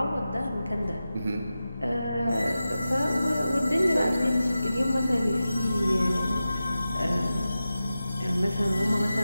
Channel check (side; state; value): both; inverted; correlation -0.93